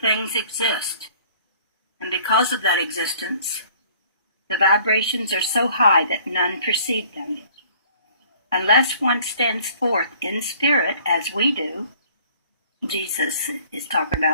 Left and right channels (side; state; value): both; inverted; correlation -0.54